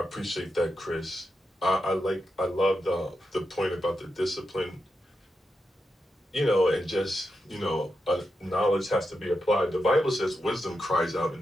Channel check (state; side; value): normal; both; correlation 0.87